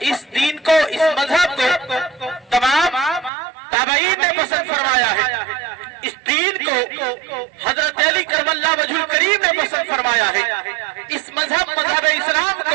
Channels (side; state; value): left; drops out; at 3.3 s